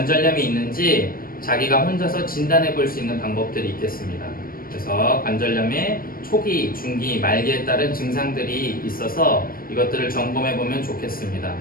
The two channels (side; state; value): right; late; 0.42 ms